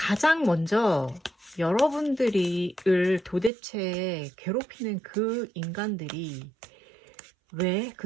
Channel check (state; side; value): drops out; left; at 3.5 s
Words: 먼저 여러분들을 도대체 괴롭히는 그 인간들이 왜